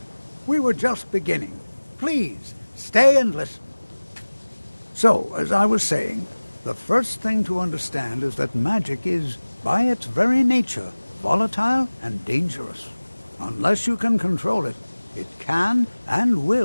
We were just beginning. Please, stay and listen. So, as I was saying, the first thing to understand is that magic is, by its very nature, volatile and dangerous. Unless you can control it, it can and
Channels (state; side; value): inverted; both; correlation -1.00